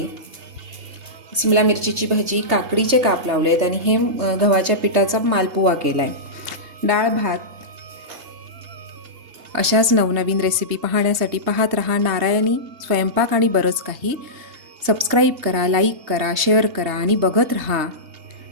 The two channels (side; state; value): left; late; 3.3 ms